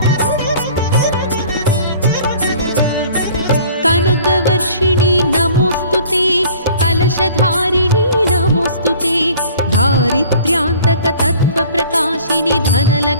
कनकवर्षिणि नमोऽस्तुते। कलशधारिणि नमोऽस्तुते। दारिद्र्यान्तकतत्त्वप्रकाशिनि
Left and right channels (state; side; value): inverted; both; correlation -0.49